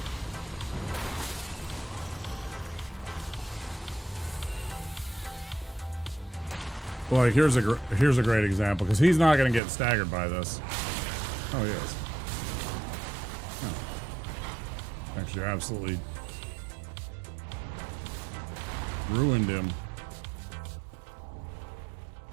Like, here's a great example, because he's not going to get staggered by this. Oh, he is. Oh. Actually, absolutely ruined him.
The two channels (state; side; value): drops out; left; at 9.6 s